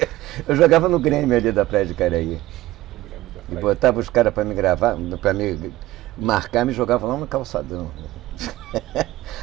Eu jogava no Grêmio ali da Praia de Caraí. E botava os caras para me gravar, para me marcar, me jogava lá no calçadão.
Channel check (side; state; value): left; quieter; 16.9 dB